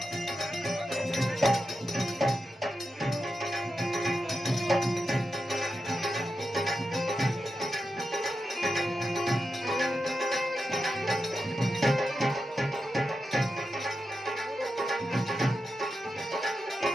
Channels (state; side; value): normal; both; correlation 0.89